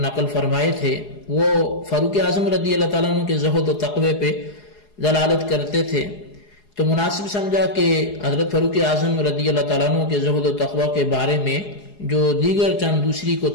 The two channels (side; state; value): right; late; 4.8 ms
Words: نقل فرمائے تھے، وہ فاروق اعظم رضی اللہ تعالیٰ عنہ کے زہد و تقوی پہ دلالت کرتے تھے، تو مناسب سمجھا کہ حضرت فاروق اعظم رضی اللہ تعالیٰ عنہ کے زہد و تقوی کے بارے میں جو دیگر چند دوسری